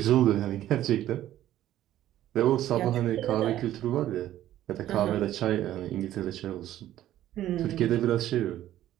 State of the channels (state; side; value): quieter; left; 13.0 dB